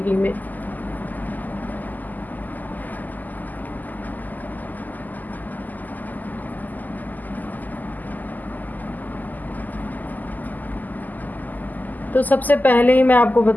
में। तो सबसे पहले ही मैं आपको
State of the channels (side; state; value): right; late; 0.083 ms